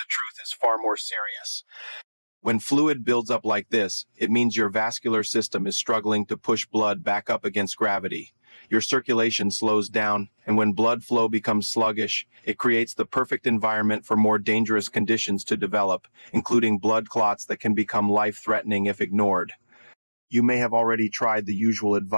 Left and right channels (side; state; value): both; inverted; correlation -1.00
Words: truth is far more serious. When fluid builds up like this, it means your vascular system is struggling to push blood back up against gravity. Your circulation slows down, and when blood flow becomes sluggish, it creates the perfect environment for more dangerous conditions to develop, including blood clots that can become life-threatening if ignored. You may have already tried the usual